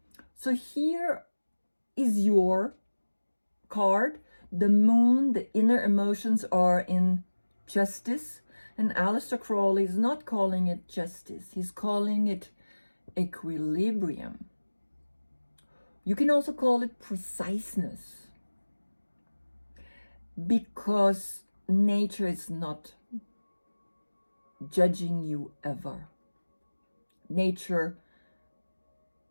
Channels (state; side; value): inverted; both; correlation -1.00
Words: So here is your card. The moon, the inner emotions are in justice. And Aleister Crowley is not calling it justice. He's calling it equilibrium. You can also call it preciseness. Because nature is not judging you ever. Nature